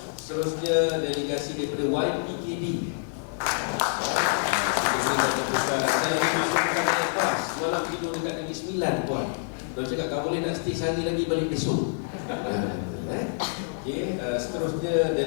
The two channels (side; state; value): right; silent; digital silence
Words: Seterusnya delegasi daripada YPKD. Kita berikan tepukan. Saya masukkan naik kelas, malam tidur dekat Negeri Sembilan, Puan. Dia cakap, kau boleh nak stay sehari lagi balik besok. Okay. Seterusnya